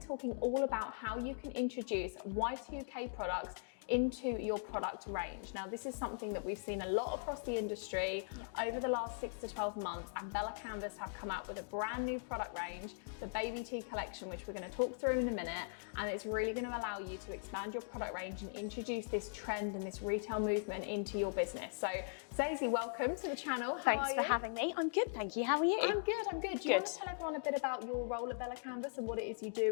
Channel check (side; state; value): right; silent; digital silence